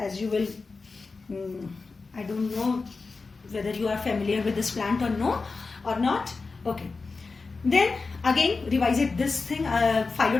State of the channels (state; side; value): quieter; right; 4.2 dB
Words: you will, I don't know whether you are familiar with this plant or no or not. Okay, then again revise it, this thing,